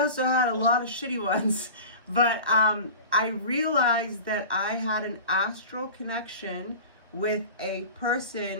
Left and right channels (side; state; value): both; inverted; correlation -0.36